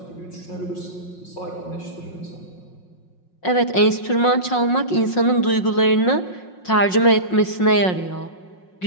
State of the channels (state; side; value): late; right; 5.5 ms